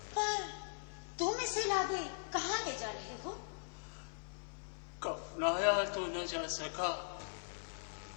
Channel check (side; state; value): right; silent; 51 dB below the other